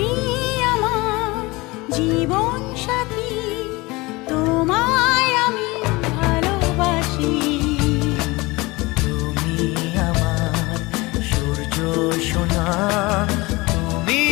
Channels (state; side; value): quieter; right; 22.9 dB